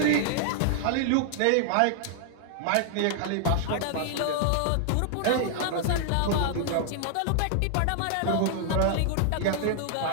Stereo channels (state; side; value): different; both; correlation -0.01